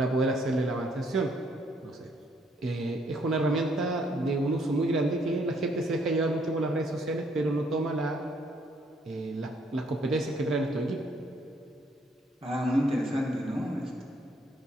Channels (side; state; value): both; normal; correlation 0.68